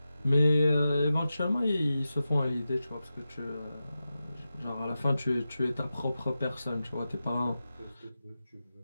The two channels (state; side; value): inverted; both; correlation -0.92